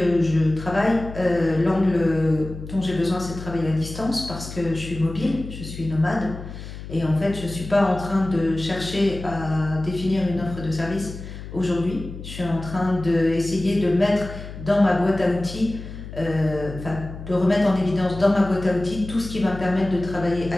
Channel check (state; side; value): noise; left; hum, 11 dB below the sound